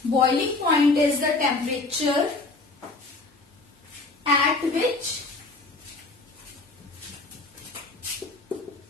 Boiling point is the temperature at which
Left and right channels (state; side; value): quieter; right; 3.4 dB